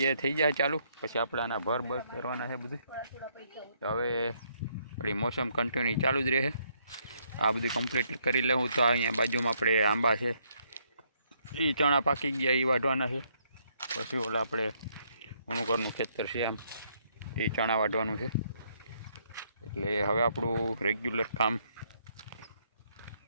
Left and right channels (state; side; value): inverted; both; correlation -0.71